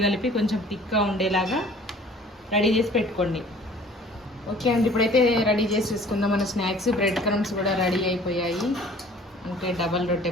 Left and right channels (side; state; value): both; normal; correlation 0.51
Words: కలిపి కొంచెం థిక్గా ఉండేలాగా రెడీ చేసి పెట్టుకోండి. ఓకే అండి, ఇప్పుడైతే రెడీ చేసి చూసుకుందాం మన స్నాక్స్. బ్రెడ్ క్రమ్స్ కూడా రెడీ అయిపోయాయి. అంటే డబల్ రొట్టె